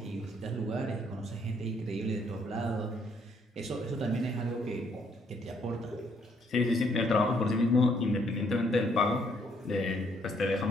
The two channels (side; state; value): both; normal; correlation 0.69